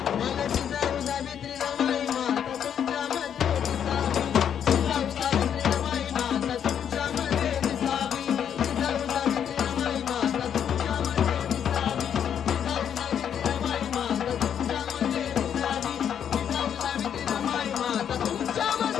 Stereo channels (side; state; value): right; quieter; 8.7 dB